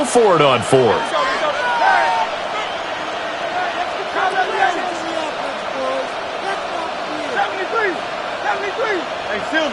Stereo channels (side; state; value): both; identical; correlation 1.00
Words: for it on 4th.